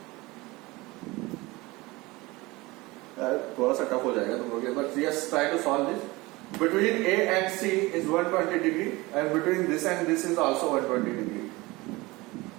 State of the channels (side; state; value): left; quieter; 22.1 dB